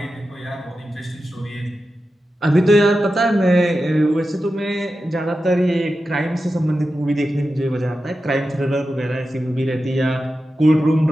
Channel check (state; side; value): normal; both; correlation 0.92